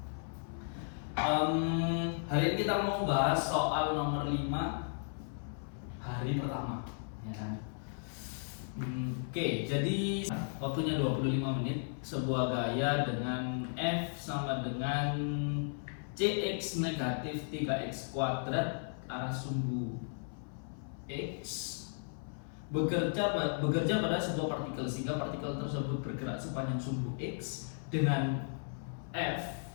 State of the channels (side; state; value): right; silent; 54 dB below the other